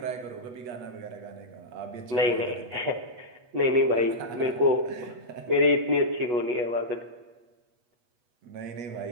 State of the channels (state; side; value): late; left; 8.2 ms